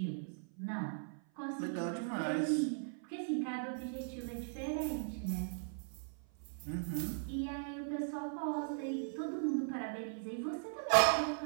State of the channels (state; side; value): silent; left; 52 dB below the other